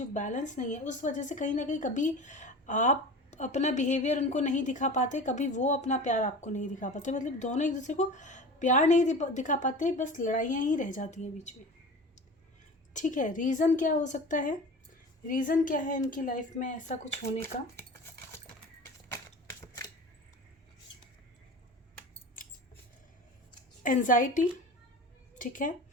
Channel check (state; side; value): normal; both; correlation 0.35